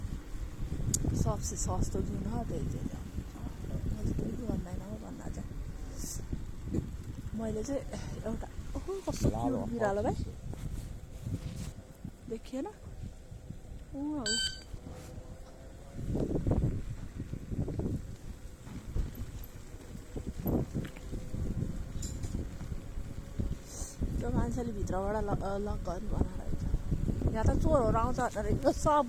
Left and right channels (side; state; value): both; identical; correlation 1.00